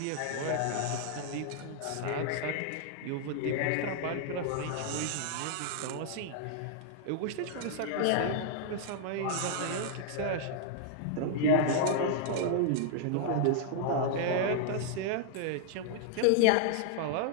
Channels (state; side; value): different; both; correlation -0.01